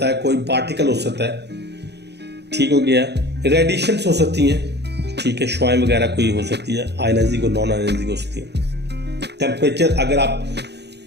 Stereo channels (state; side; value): late; left; 0.49 ms